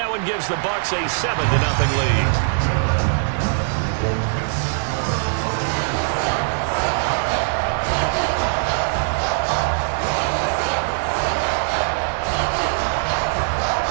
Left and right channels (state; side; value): silent; left; digital silence